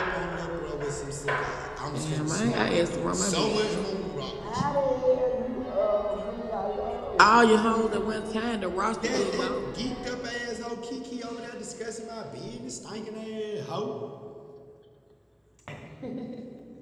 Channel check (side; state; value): both; identical; correlation 1.00